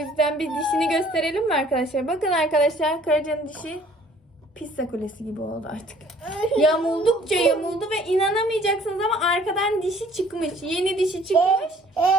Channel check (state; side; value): normal; both; correlation 0.56